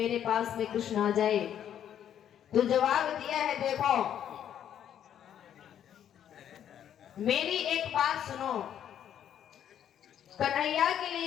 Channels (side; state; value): right; quieter; 9.8 dB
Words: पास में कृष्ण आ जाए। तो जवाब दिया है, देखो मेरी एक बात सुनो, कन्हैया के